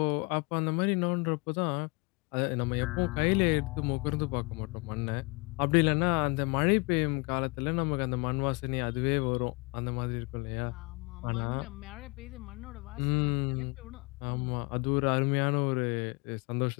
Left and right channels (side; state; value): right; quieter; 29.0 dB